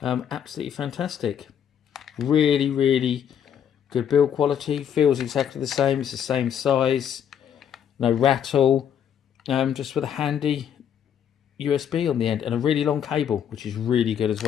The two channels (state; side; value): quieter; right; 8.8 dB